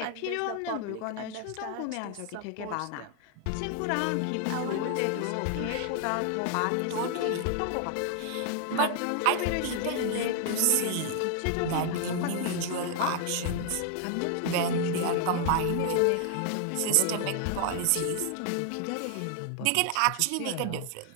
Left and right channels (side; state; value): both; different; correlation 0.00